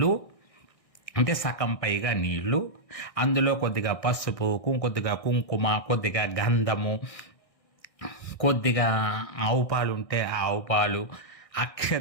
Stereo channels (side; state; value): right; late; 1.6 ms